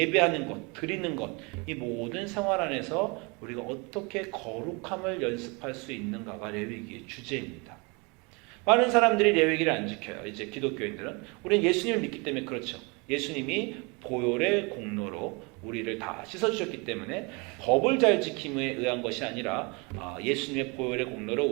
것, 드리는 것, 이 모든 생활 안에서 우리가 어떻게 거룩함을 연습할 수 있는가가 레위기의 주제입니다. 많은 사람들이 레위기를 안 지켜요. 이제 기독교인들은. 우리는 예수님을 믿기 때문에 그렇죠. 예수님이 보혈의 공로로 우리를 다 씻어주셨기 때문에 법을 잘 지킴에 의한 것이 아니라 예수님의 보혈의 공로로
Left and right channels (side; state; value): left; quieter; 29.6 dB